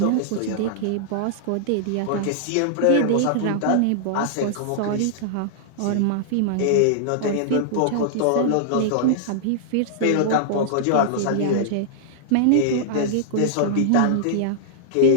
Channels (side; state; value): both; different; correlation -0.01